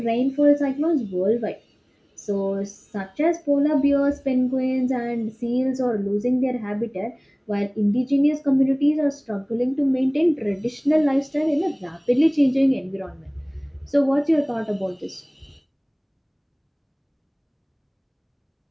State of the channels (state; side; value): identical; both; correlation 1.00